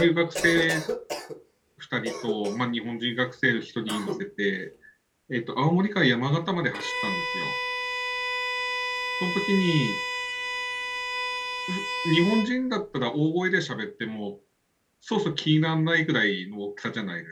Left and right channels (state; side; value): identical; both; correlation 1.00